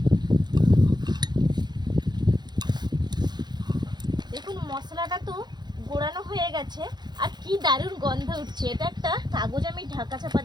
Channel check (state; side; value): late; left; 0.21 ms